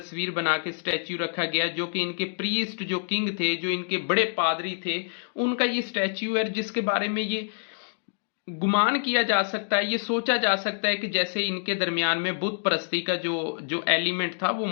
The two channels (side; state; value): right; silent; digital silence